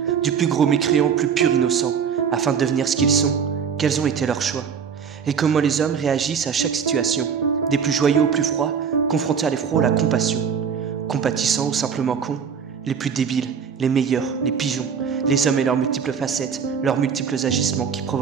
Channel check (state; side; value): quieter; left; 6.9 dB